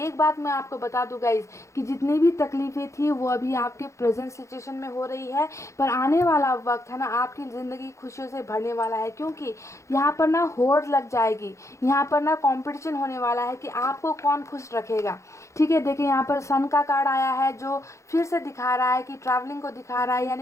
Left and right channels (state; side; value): late; right; 0.14 ms